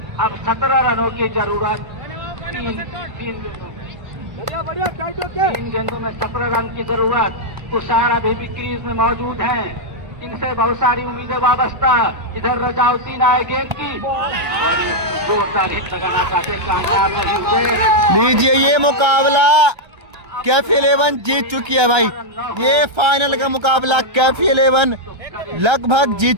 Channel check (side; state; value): left; late; 1.3 ms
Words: अब 17 रनों की जरूरत। 3 गेंदों में 17 रन की जरूरत। तुषार अभी भी क्रीज में मौजूद हैं। इनसे बहुत सारी उम्मीदें वाबस्ता। इधर रजाउद्दीन आए गेंद की, जोरदार हिट लगाना चाहते, कामयाब नहीं हुए। लीजिए ये मुकाबला कैफी 11 जीत चुकी है भाई। ये फाइनल का मुकाबला कैफी 11 लगभग